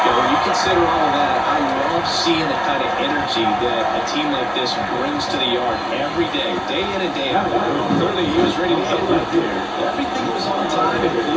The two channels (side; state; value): both; identical; correlation 1.00